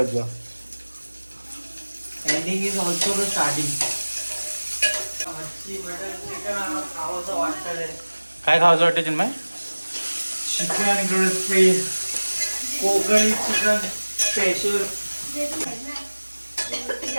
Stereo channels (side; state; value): both; inverted; correlation -1.00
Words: जा. Ending is also the starting. खावंसं वाटतं. काय खावंसं वाटतं Chinmay? Chicken crispy Kokani chicken special.